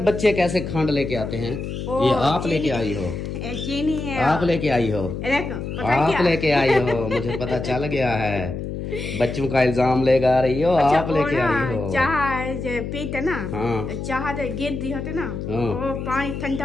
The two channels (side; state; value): left; noise; hum, 6 dB below the sound